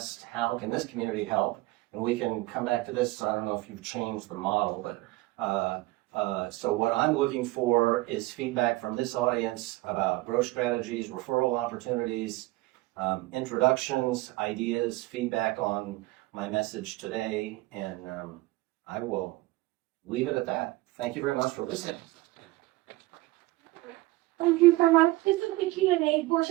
how can this community help? And we can come back to this. I don't know if you've changed the model, but so what I'm looking for is feedback from this audience about growth strategies, referral opportunities, introductions, ideas, feedback on my message today, and I will leave it at that. Thank you very much for listening. Thank you very much. This is the Q&A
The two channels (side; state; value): left; quieter; 19.7 dB